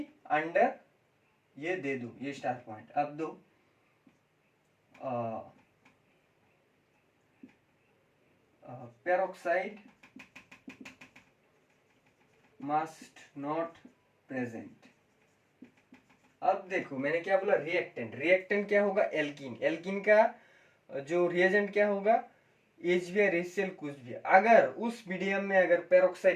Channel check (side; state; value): both; identical; correlation 1.00